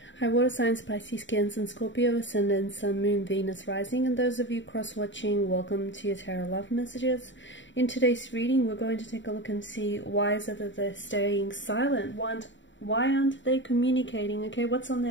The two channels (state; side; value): late; right; 0.54 ms